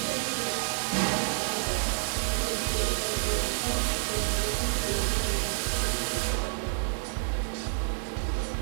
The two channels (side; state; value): left; silent; 59 dB below the other